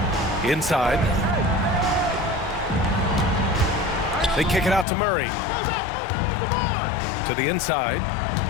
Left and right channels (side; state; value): right; drops out; at 4.9 s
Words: Inside. They kick it out to Murray. To the inside.